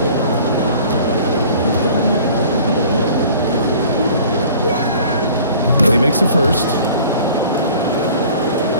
And he makes the first.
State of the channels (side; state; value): both; inverted; correlation -0.48